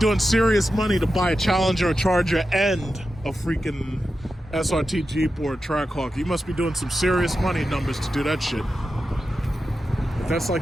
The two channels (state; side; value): normal; both; correlation 0.91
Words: serious money to buy a Challenger, a Charger, and a freaking SRT Jeep or a Trackhawk. You must be doing some serious money numbers to do that shit. But that's